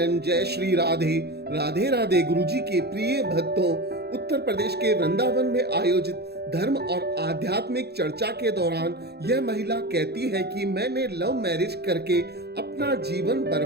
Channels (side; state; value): left; late; 0.47 ms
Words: जय श्री राधे राधे राधे। गुरुजी के प्रिय भक्तों, उत्तर प्रदेश के वृंदावन में आयोजित धर्म और आध्यात्मिक चर्चा के दौरान यह महिला कहती है कि मैंने लव मैरिज करके अपना जीवन